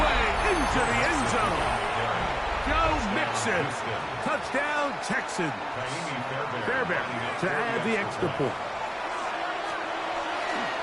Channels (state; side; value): identical; both; correlation 1.00